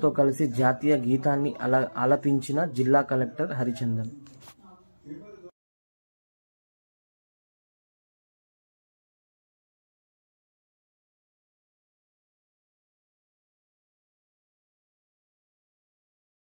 కలిసి జాతీయ గీతాన్ని ఆలపించిన జిల్లా కలెక్టర్ హరిచందన్.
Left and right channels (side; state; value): both; inverted; correlation -1.00